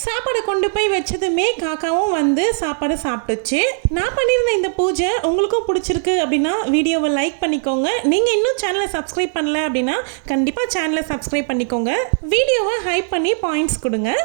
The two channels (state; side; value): silent; left; digital silence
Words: சாப்பாடு கொண்டு போய் வச்சதுமே காக்காவும் சாப்பாடு சாப்பிட்டுச்சு. நான் பண்ணியிருந்த இந்த பூஜை உங்களுக்கும் பிடிச்சிருக்கு அப்படின்னா வீடியோவை லைக் பண்ணிக்கோங்க. நீங்கள் இன்னும் சேனலை சப்ஸ்கிரைப் பண்ணல அப்படின்னா கண்டிப்பாக சேனலை சப்ஸ்கிரைப் பண்ணிக்கோங்க. வீடியோவை ஹைப் பண்ணி பாயிண்ட்ஸ் கொடுங்க.